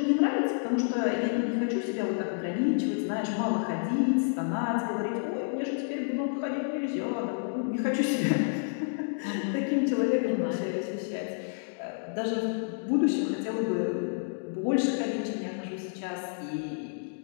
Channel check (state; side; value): silent; right; digital silence